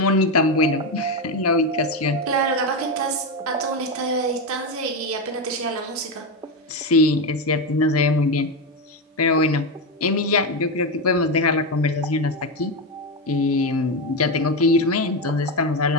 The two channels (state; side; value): normal; both; correlation 0.12